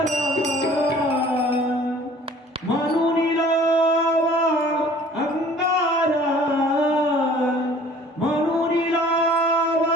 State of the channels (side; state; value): both; normal; correlation 0.51